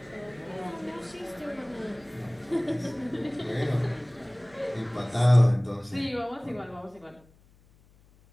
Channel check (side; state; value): left; noise; hum, 29 dB below the sound